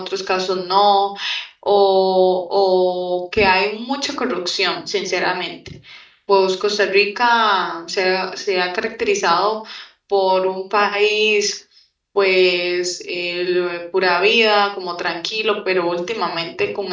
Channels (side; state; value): both; identical; correlation 1.00